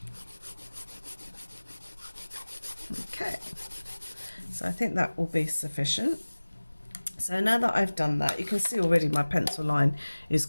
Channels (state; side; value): inverted; both; correlation -1.00